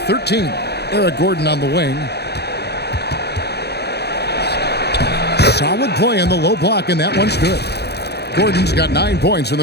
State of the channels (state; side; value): late; right; 0.48 ms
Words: Eric Gordon on the wing. Solid play in the low block, and that one's good. Gordon's got 9 points in the